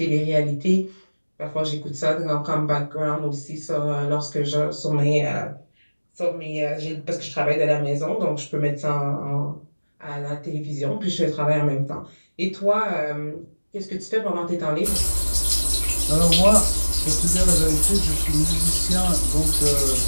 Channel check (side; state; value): both; inverted; correlation -1.00